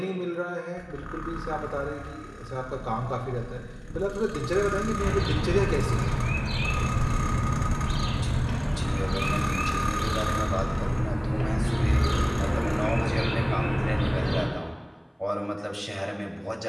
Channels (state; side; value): identical; both; correlation 1.00